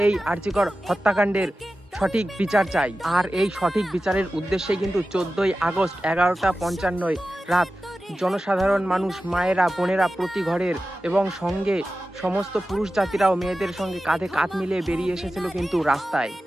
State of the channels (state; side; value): normal; both; correlation 0.94